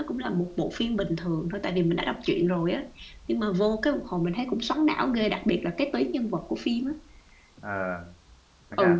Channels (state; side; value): identical; both; correlation 1.00